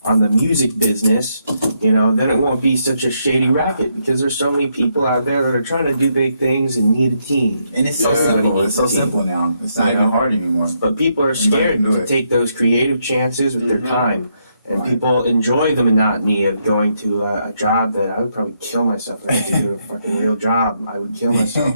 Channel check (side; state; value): both; inverted; correlation -0.78